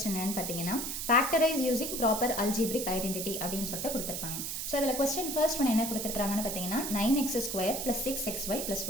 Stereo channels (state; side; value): noise; right; hiss, 4 dB below the sound